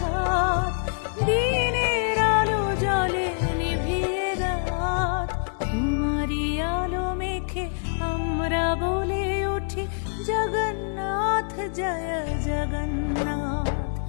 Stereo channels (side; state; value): right; silent; digital silence